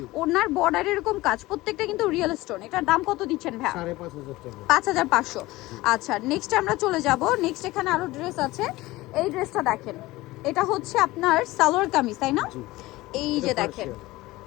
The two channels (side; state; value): right; quieter; 19.1 dB